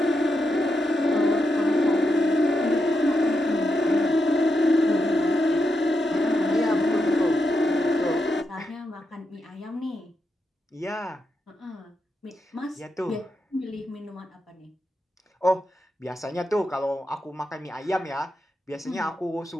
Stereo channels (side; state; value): both; normal; correlation 0.85